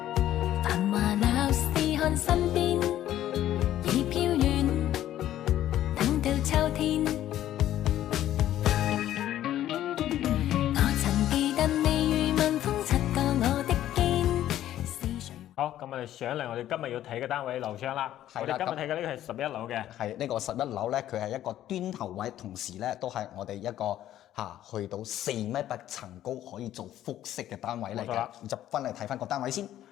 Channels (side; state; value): right; quieter; 12.5 dB